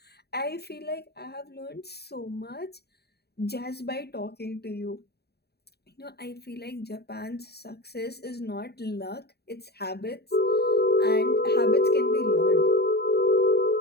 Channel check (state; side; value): late; right; 0.47 ms